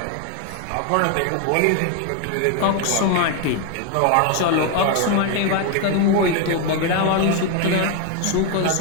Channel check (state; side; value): different; both; correlation 0.01